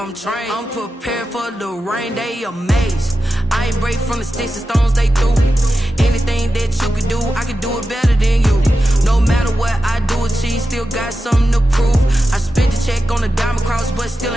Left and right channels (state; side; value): normal; both; correlation 0.91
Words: trained. I'm prepared for the rain, they amazed. I ain't break from the sticks and stones they threw. Anything that you can do, I can do it better than you. No matter what I do, achieve, still got something to prove. I spent the check on the diamond cross, but still